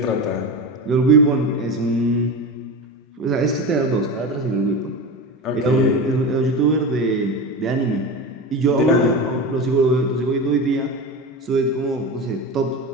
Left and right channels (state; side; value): normal; both; correlation 0.24